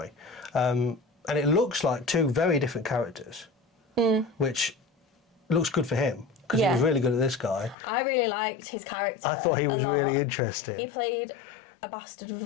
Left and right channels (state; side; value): drops out; right; at 7.8 s